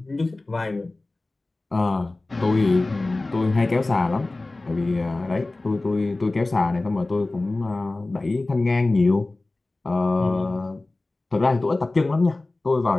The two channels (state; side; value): quieter; right; 3.0 dB